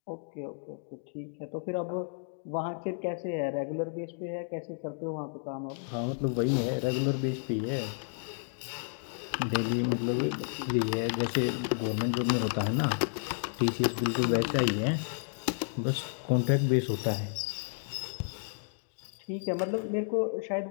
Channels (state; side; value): silent; right; digital silence